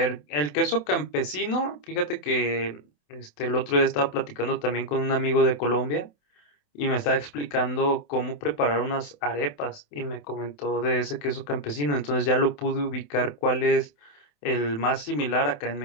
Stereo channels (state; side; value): late; right; 27 ms